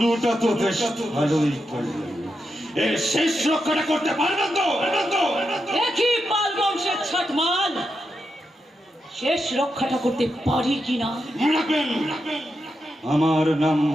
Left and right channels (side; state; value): both; normal; correlation 0.86